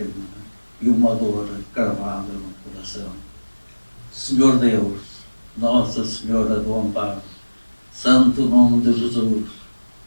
e uma dor cravada no coração. Senhor Deus, Nossa Senhora do Amparo, Santo Nome de Jesus,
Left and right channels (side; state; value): both; inverted; correlation -1.00